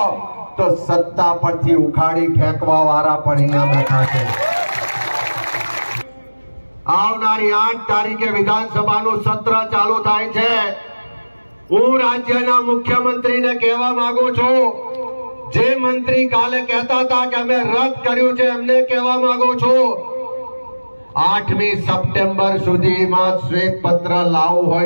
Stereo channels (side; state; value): both; inverted; correlation -1.00